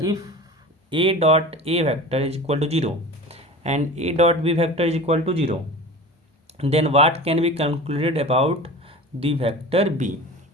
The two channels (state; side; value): normal; both; correlation 0.35